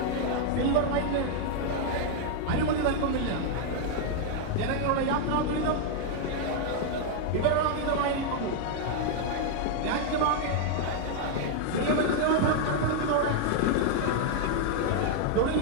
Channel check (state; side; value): different; both; correlation 0.00